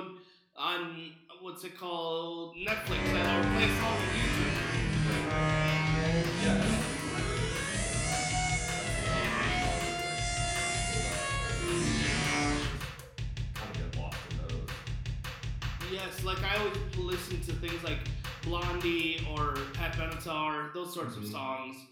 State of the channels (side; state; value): both; identical; correlation 1.00